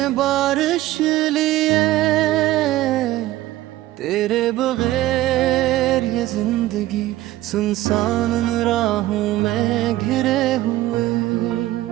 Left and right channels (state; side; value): quieter; left; 15.8 dB